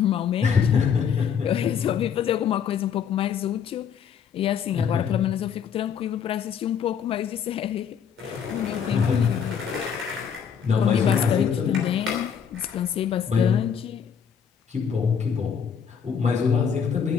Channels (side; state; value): right; quieter; 7.4 dB